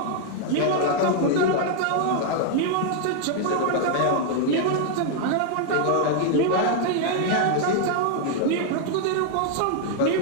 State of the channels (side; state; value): both; different; correlation 0.00